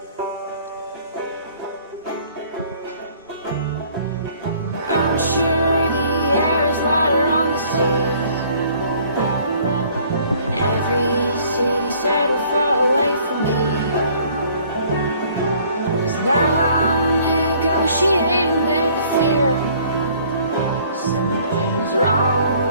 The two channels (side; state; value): both; inverted; correlation -0.57